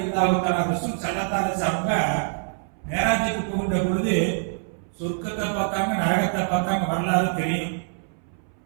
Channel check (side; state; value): left; silent; 62 dB below the other